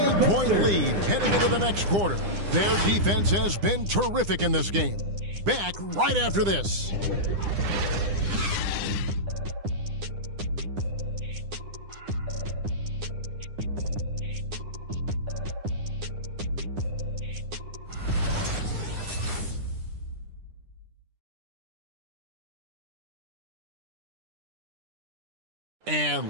lead heading into the next quarter. Their defense has been terrific in this game. Back right after this. And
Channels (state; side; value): late; left; 9.9 ms